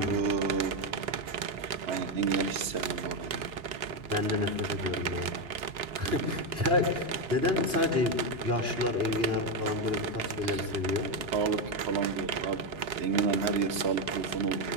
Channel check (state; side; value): late; left; 3.7 ms